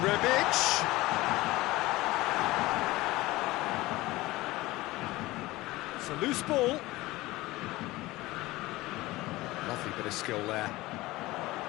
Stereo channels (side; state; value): right; quieter; 19.2 dB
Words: It's a loose ball. Lovely bit of skill there.